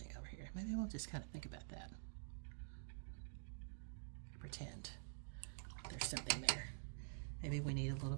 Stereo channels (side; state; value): left; silent; digital silence